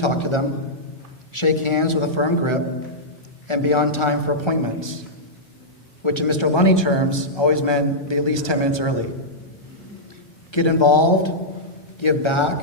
to them, shake hands with a firm grip, and be on time for appointments, which in Mr. Lunny terms always meant be at least 10 minutes early. Get involved, give back,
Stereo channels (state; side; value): late; right; 1.2 ms